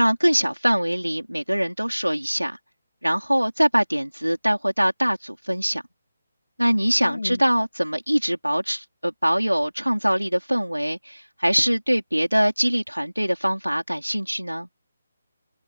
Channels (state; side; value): inverted; both; correlation -1.00